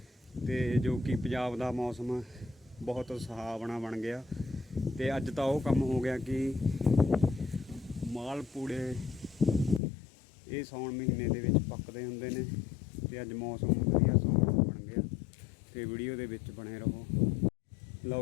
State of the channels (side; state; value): right; drops out; at 9.8 s